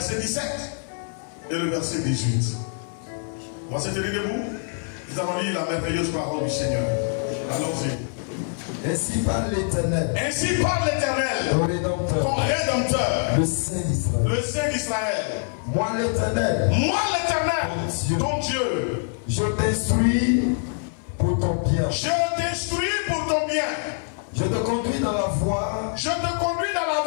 17 et le verset 18. On va se tenir debout. Nous allons lire la merveilleuse parole du Seigneur. Allons-y. Ainsi parle l'Éternel. Ainsi parle l'Éternel, ton Rédempteur, ton Rédempteur, le Saint d'Israël. le Saint d'Israël. Moi l'Éternel, ton Dieu, je t'instruis pour ton bien. Je t'instruis pour ton bien. Je te conduis dans la voie. Je te conduis dans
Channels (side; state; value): right; silent; 62 dB below the other